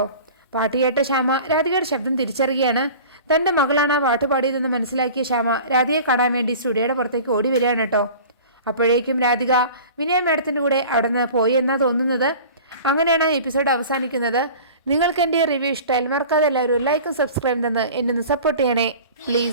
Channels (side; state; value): both; inverted; correlation -0.41